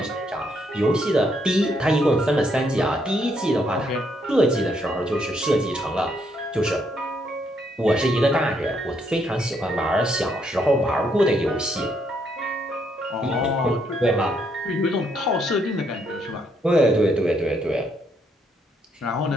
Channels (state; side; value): normal; both; correlation 0.73